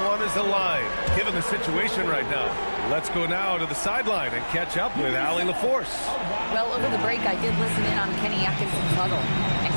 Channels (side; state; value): both; inverted; correlation -1.00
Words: is aligned, given the situation right now. Let's go now to the sideline and catch up with Allie LaForce. Well, over the break, I did listen in on Kenny Atkinson's huddle, and